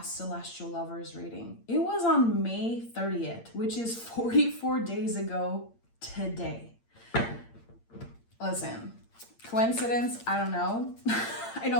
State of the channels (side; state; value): right; late; 8.7 ms